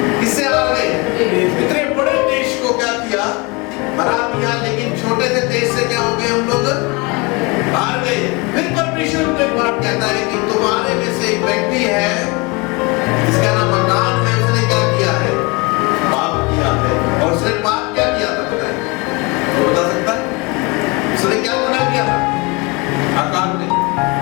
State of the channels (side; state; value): right; quieter; 27.6 dB